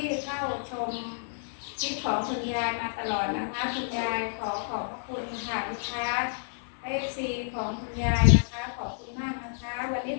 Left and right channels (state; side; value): silent; right; 58 dB below the other